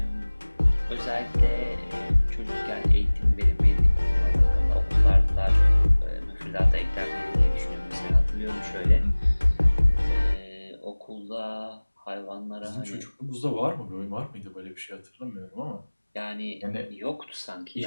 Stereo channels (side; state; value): both; inverted; correlation -1.00